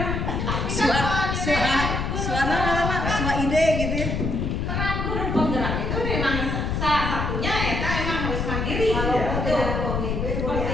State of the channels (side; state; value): left; noise; rumble, 1 dB below the sound